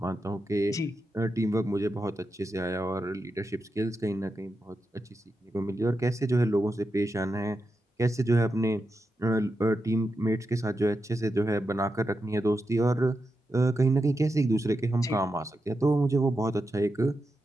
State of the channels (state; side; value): normal; both; correlation 0.88